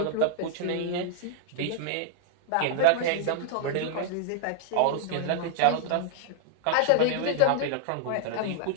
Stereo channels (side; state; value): both; different; correlation -0.01